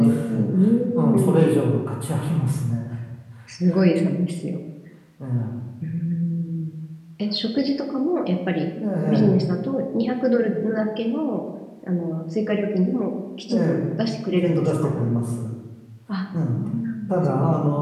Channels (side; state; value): both; identical; correlation 1.00